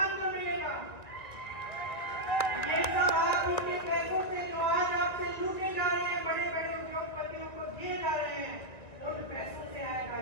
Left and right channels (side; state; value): right; late; 1.7 ms